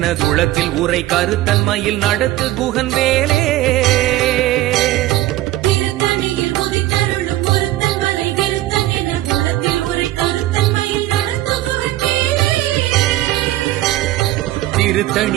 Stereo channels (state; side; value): quieter; left; 15.7 dB